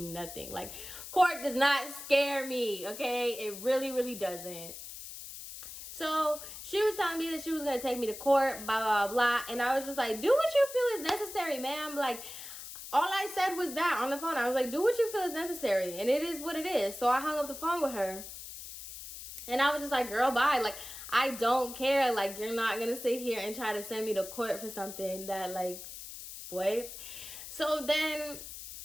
Like, court does not scare me, okay? It really, really doesn't. So she was telling me that she was going to take me to court, blah, blah, blah. And I was just like, do what you feel is necessary, ma'am. Like, all I said was that on the phone. I was like, do what you feel is necessary. And it is what it is. So I hung up the phone with her. And I was just like, girl, bye. Like, I don't care. Like, you're not going to sit here and try to send me to court for something that, like, what? So then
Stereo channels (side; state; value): left; noise; hiss, 11 dB below the sound